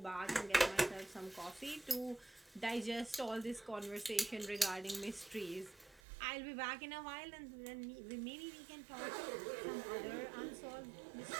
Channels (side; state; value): left; drops out; at 6.0 s